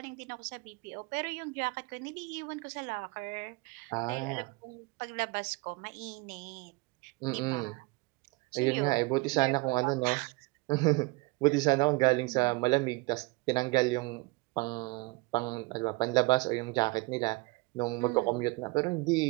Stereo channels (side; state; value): left; quieter; 25.2 dB